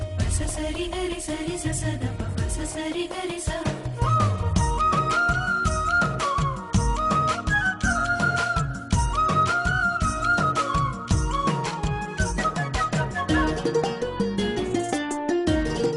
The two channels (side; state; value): both; identical; correlation 1.00